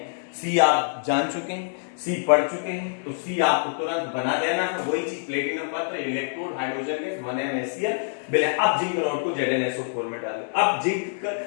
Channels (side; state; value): right; silent; digital silence